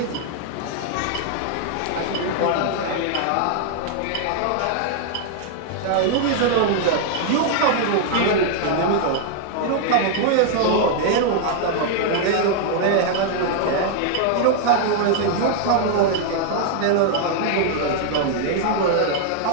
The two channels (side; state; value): both; different; correlation 0.00